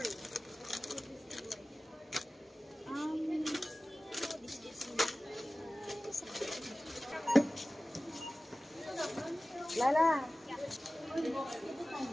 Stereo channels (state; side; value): normal; both; correlation 0.97